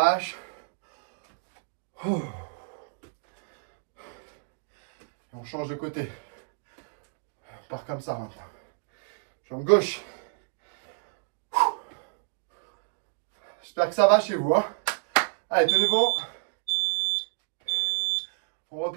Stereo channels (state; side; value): silent; left; digital silence